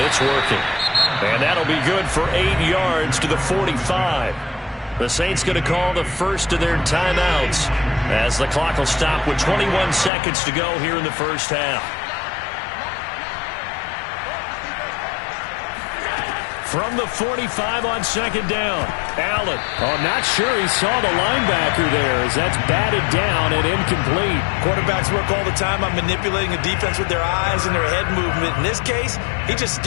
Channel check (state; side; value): drops out; right; at 10.1 s